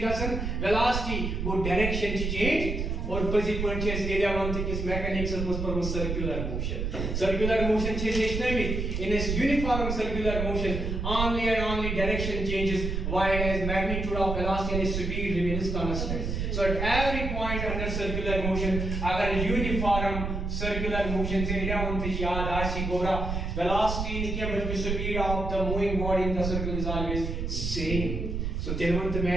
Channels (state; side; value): noise; right; rumble, 2 dB below the sound